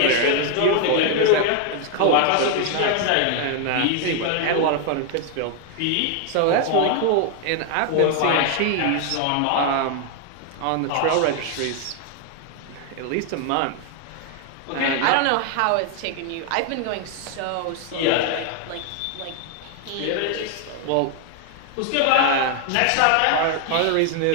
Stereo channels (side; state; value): both; different; correlation 0.00